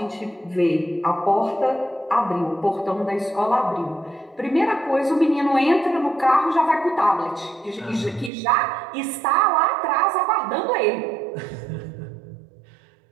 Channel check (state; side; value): drops out; left; at 8.3 s